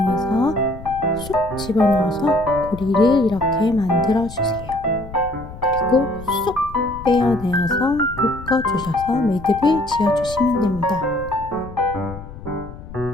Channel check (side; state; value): left; noise; rumble, 14 dB below the sound